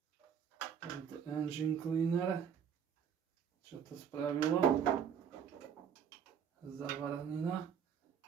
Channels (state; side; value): quieter; left; 7.7 dB